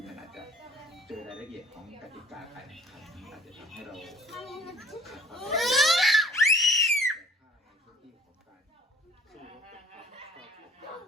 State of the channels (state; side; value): normal; both; correlation 0.52